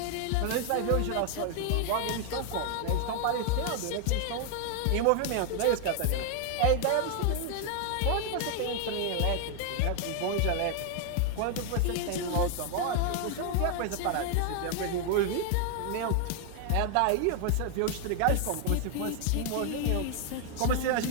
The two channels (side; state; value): both; different; correlation 0.00